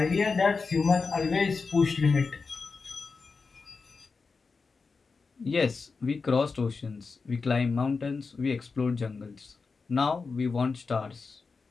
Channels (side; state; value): right; quieter; 4.6 dB